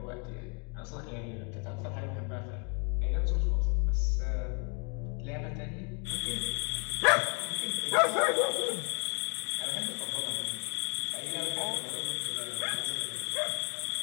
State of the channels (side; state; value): right; quieter; 36.1 dB